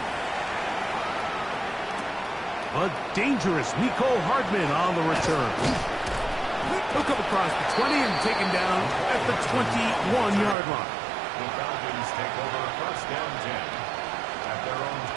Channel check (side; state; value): left; drops out; at 10.6 s